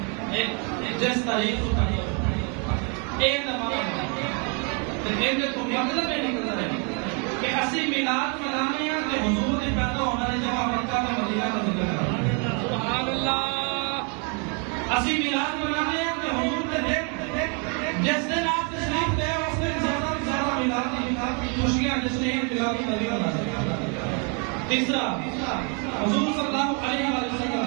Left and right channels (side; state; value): left; quieter; 36.0 dB